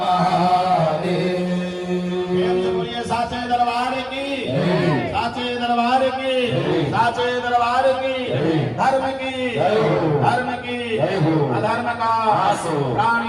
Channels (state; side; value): identical; both; correlation 1.00